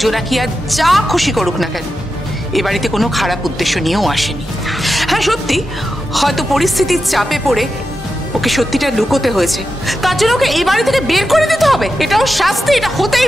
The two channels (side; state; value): both; normal; correlation 0.89